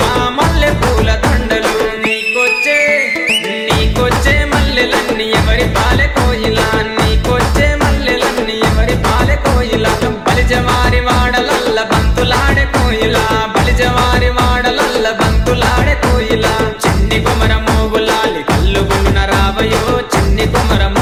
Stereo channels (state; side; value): identical; both; correlation 1.00